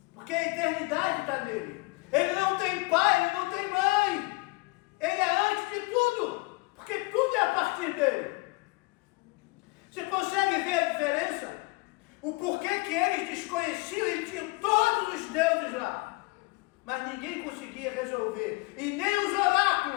porque a eternidade está nele. Ele não tem pai, ele não tem mãe, ele é antes de tudo, porque tudo é a partir dele. Você consegue ver a diferença? O porquê que eles desconheciam e tinham todos os deuses lá. Mas ninguém conseguia resolver, e nem os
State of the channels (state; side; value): quieter; right; 25.3 dB